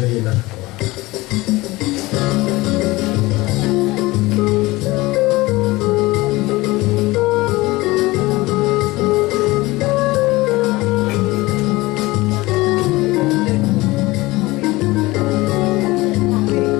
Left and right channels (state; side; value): quieter; right; 20.6 dB